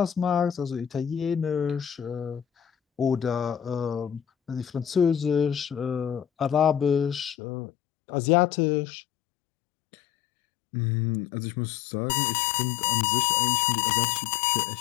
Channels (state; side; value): drops out; right; at 7.4 s